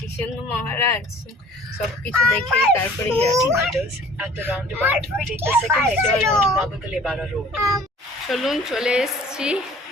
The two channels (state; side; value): normal; both; correlation 0.50